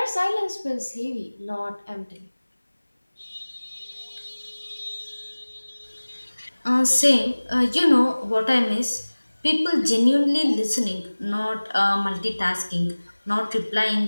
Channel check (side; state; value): both; inverted; correlation -1.00